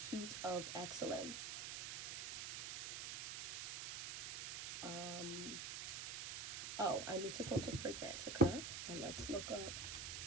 of excellence. Oh, I need to go to Fragrantica and let's look up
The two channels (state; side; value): noise; right; hiss, 5 dB below the sound